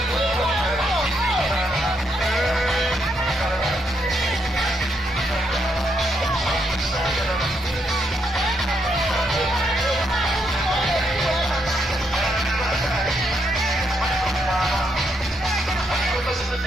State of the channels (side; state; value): both; normal; correlation 0.77